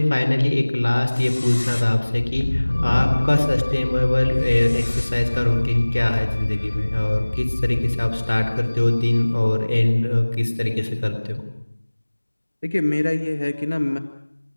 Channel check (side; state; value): both; inverted; correlation -1.00